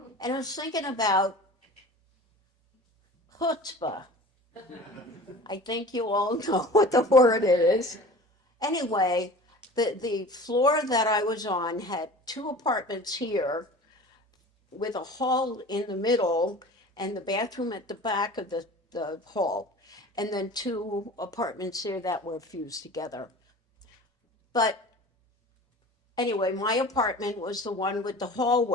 And I was thinking about chutzpah. I think you all know what the word is. Anyway, the floor that I was on had 2 apartments here with a hall in the middle and the bathroom at the back of the hall, and then 2 apartments here that were fused together. But anyway, my apartment was the one with the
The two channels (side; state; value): both; normal; correlation 0.40